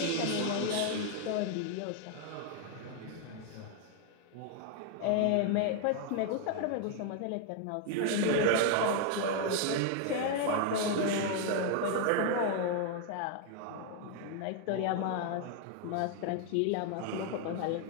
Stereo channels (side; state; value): both; different; correlation 0.00